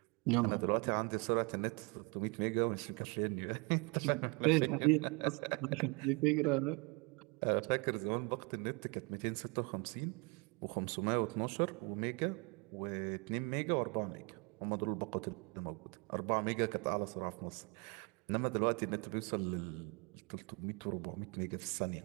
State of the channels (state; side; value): quieter; left; 31.0 dB